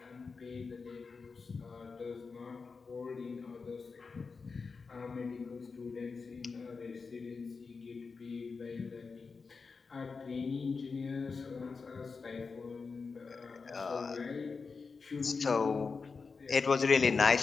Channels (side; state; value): right; quieter; 4.8 dB